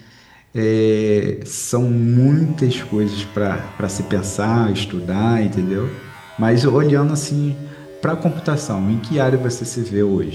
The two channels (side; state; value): both; identical; correlation 1.00